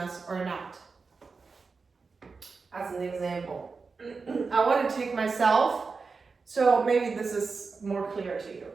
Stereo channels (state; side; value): quieter; left; 4.6 dB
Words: or not. As an example, I want to take myself, so maybe this is more clear to you.